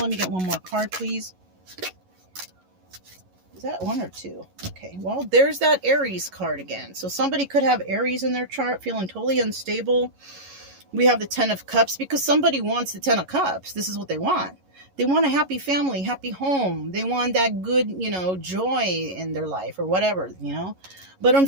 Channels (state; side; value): late; left; 11 ms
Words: me get one more card, please. Is that one or two? Okay, well, there's that Aries card again. So somebody could have Aries in their chart, feeling totally unstable. We have the Ten of Cups because somebody wants the Ten of Cups. This is what they want. They want a happy family, happy home. They want that good, you know, joy in their life or whatever, you know. But